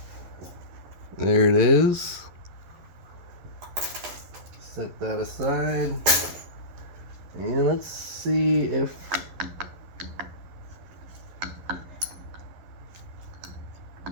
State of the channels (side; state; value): left; late; 11 ms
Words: There it is. Set that aside. And let's see if